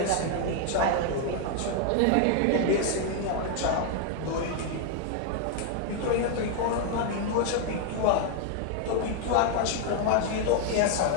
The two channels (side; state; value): both; different; correlation 0.00